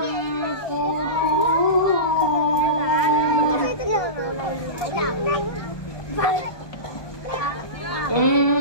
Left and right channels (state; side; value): late; right; 1.2 ms